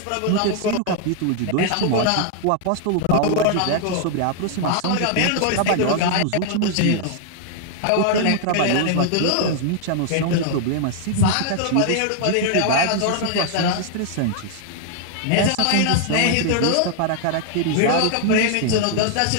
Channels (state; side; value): different; both; correlation 0.00